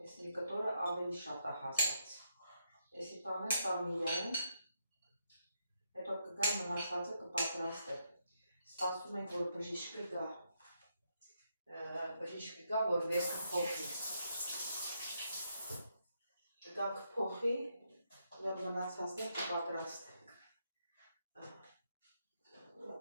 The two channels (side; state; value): both; inverted; correlation -0.79